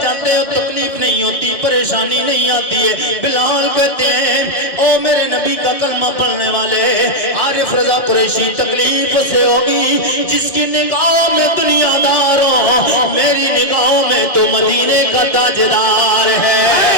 جاتے ہو, تکلیف نہیں ہوتی, پریشانی نہیں آتی ہے. بلال کہتے ہیں او میرے نبی کا کلمہ پڑھنے والے عارف رضا قریشی, تکلیف سے ہوگی جس کی نگاہوں میں دنیا دار ہو, میری نگاہوں میں تو مدینے کا تاجدار ہے.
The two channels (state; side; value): late; right; 1.7 ms